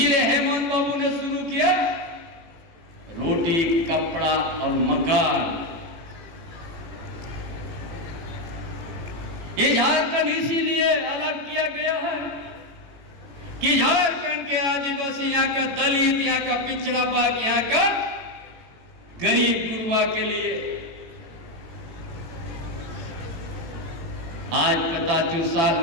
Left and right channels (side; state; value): left; late; 18 ms